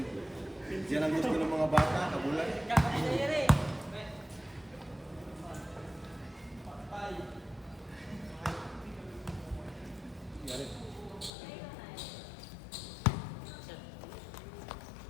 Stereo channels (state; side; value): drops out; right; at 11.3 s